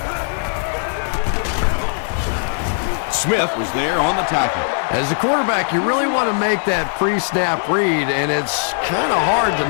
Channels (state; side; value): silent; right; digital silence